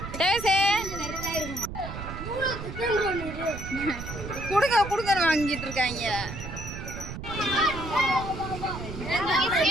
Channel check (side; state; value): right; noise; rumble, 9 dB below the sound